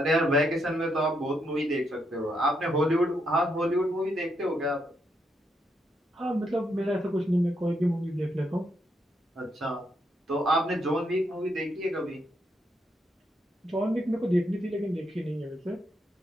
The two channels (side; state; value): both; normal; correlation 0.78